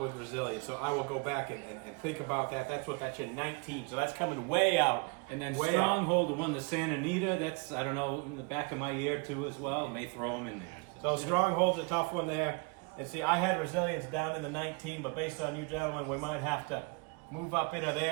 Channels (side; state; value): left; quieter; 31.5 dB